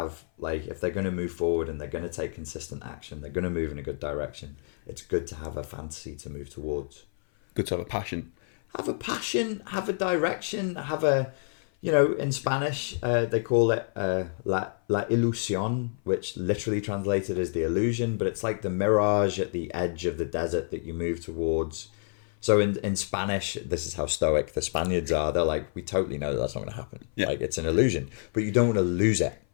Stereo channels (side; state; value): right; silent; 56 dB below the other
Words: like, if they're going to move forward and they're going to take consistent action, they're going to move in a good direction. It's good to have a fantasy to move towards. Good to have a passion. Have a passion. Have a direction. Have a. You know, in Spanish, they call it la ilusión, which literally translated as the illusion, but it's like the mirage at the edge of the desert that you move towards. So in Spanish, this is how stoic the Spaniards are. They're like, we totally know that's not going to happen. Yeah. Like, it's an illusion, but you don't want to lose it.